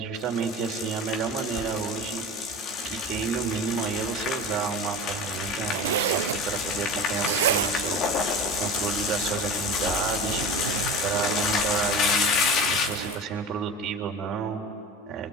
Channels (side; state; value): both; normal; correlation 0.32